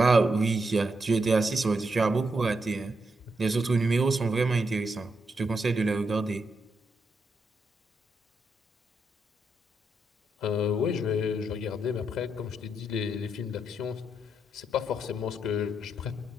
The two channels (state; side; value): normal; both; correlation 0.81